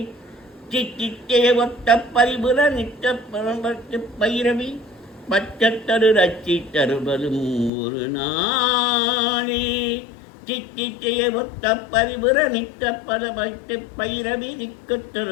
சித்தித்தே ஒத்த பரிபுர நித்த பரம்பத்து பைரவி பச்சத்தரு ரச்சி தருவதும் ஒரு நாளே. சித்தித்தே ஒத்த பரிபுர நித்த பரம்பத்து பைரவி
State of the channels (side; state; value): right; drops out; at 7.7 s